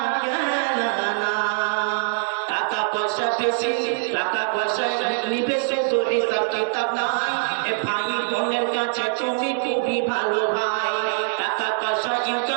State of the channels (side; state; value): left; silent; 63 dB below the other